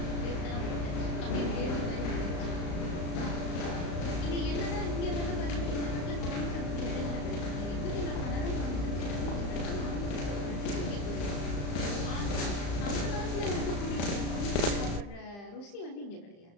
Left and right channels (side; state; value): right; late; 35 ms